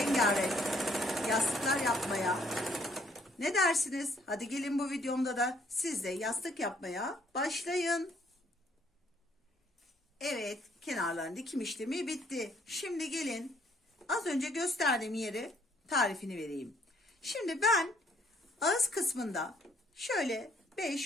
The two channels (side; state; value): both; normal; correlation 0.66